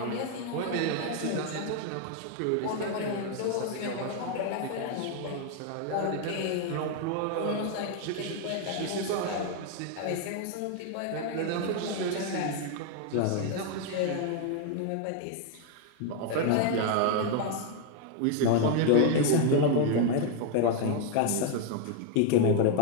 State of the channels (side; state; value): both; different; correlation 0.01